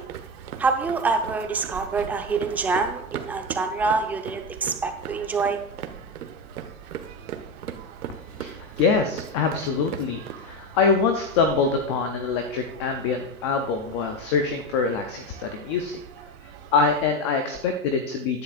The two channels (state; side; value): normal; both; correlation 0.16